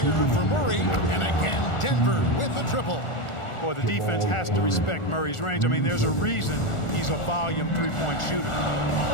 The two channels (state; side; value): late; right; 1.4 ms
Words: for Murray. And again, Denver with the triple. Boy, the defense has to respect Murray's range. I mean, there's a reason he's a volume three-point shooter.